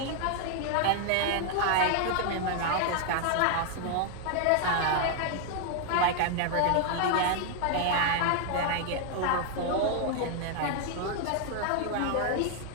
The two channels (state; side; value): different; both; correlation 0.00